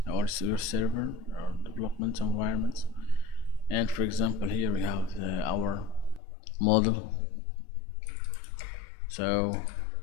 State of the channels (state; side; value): drops out; right; at 6.2 s